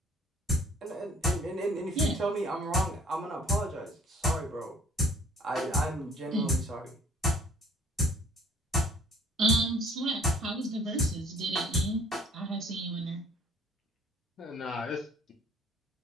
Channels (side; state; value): both; normal; correlation 0.55